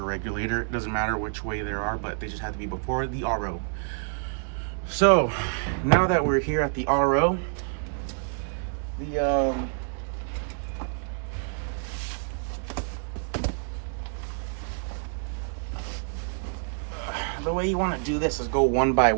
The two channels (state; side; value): silent; left; 60 dB below the other